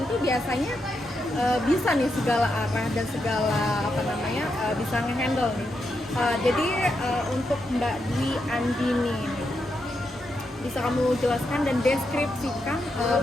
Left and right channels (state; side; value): normal; both; correlation 0.83